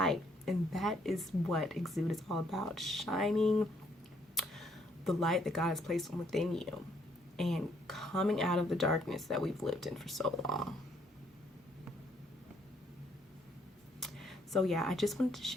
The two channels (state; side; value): normal; both; correlation 0.68